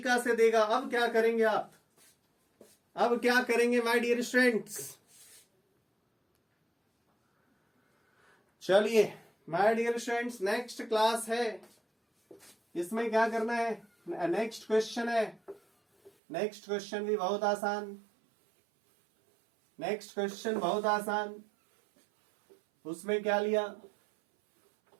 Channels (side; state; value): left; drops out; at 16.1 s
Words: से देगा। अब क्या करेंगे आप? अब क्या करेंगे माय डियर स्टूडेंट्स? चलिए my dear students, next class है, इसमें क्या करना है? नेक्स्ट क्वेश्चन है। नेक्स्ट क्वेश्चन भी बहुत आसान, नेक्स्ट क्वेश्चन बहुत आसान। उसमें क्या लिया?